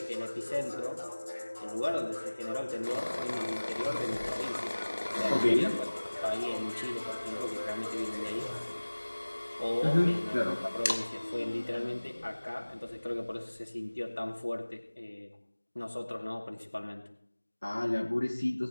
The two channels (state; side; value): inverted; both; correlation -1.00